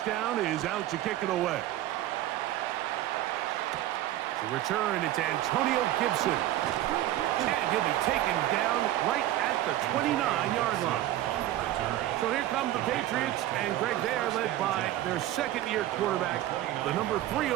is out to kick it away. To return, it's Antonio Gibson. And he'll be taken down right at the 29-yard line. So here come the Patriots, and Greg, they are led by their second-year quarterback, the number 3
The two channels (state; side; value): quieter; left; 14.1 dB